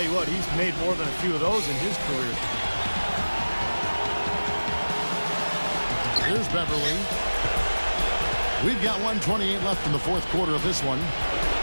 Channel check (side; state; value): both; inverted; correlation -1.00